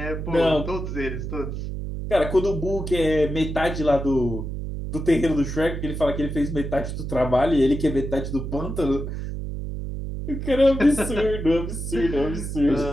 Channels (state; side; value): noise; right; hum, 5 dB below the sound